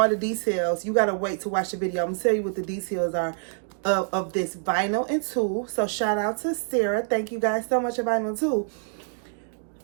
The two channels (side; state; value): left; silent; digital silence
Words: the details. You gotta wait to watch the video. I'm gonna tell you what the details are of this vinyl and tulle. So shout out to Sarah. Thank you guys so much for vinyl and tulle.